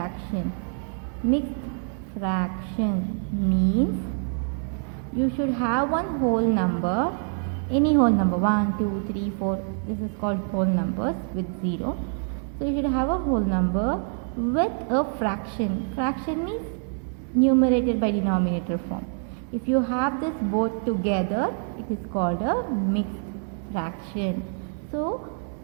Mixed fraction means you should have one whole number, any whole number, 1, 2, 3, 4. This is called whole numbers with 0. So you should have a whole number with a fraction. Fraction means numerator by denominator form. If you have this both together, it is called a mixed fraction. So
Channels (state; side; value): silent; left; 55 dB below the other